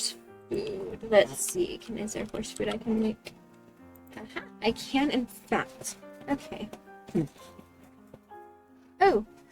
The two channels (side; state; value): both; identical; correlation 1.00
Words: food. Let's see. Is there horse food I can make? Aha, I can, in fact. Okay. Oh.